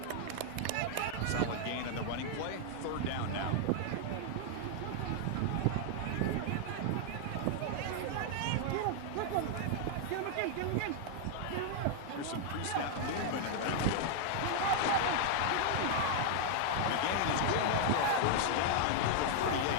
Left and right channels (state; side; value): different; both; correlation -0.01